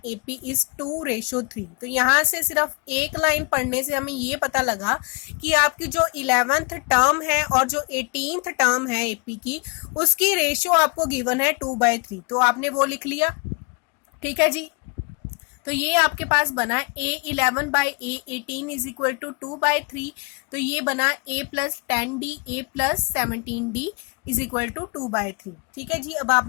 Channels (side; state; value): right; quieter; 31.7 dB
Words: AP is 2:3। तो यहाँ से सिर्फ एक लाइन पढ़ने से हमें ये पता लगा कि आपकी जो 11th टर्म है और जो 18th टर्म है एपी की, उसकी रेशियो आपको गिवन है 2/3। तो आपने वो लिख लिया, ठीक है जी। तो ये आपके पास बना A11 by A18 is equal to 2/3। तो ये बना A plus 10D A plus 17D is equal to 2/3। ठीक है जी। अब